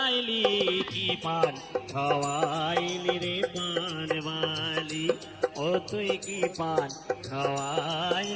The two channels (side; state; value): both; identical; correlation 1.00